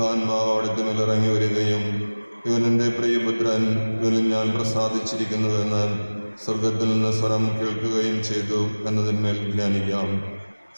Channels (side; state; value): both; inverted; correlation -1.00